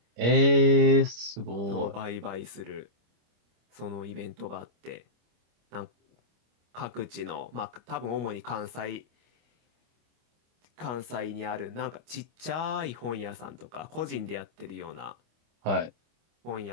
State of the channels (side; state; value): left; late; 25 ms